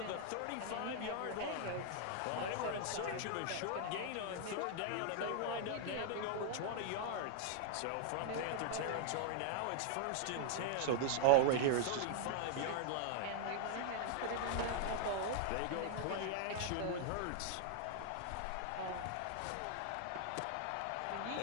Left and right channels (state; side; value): different; both; correlation -0.01